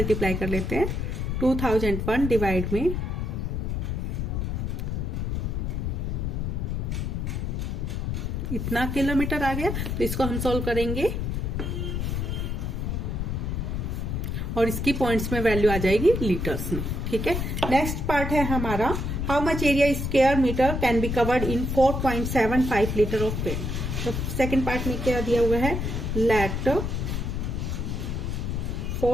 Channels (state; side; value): noise; left; rumble, 1 dB below the sound